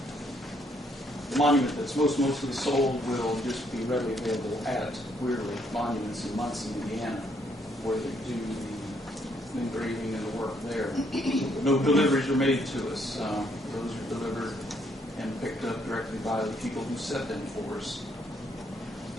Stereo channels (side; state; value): both; normal; correlation 0.70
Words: the monument that's mostly sold will just be readily available at Weirly Monuments in Muncie, Indiana, where they do the engraving and the work there. No deliveries are made to us. Those are delivered and picked up directly by the people who set them for us.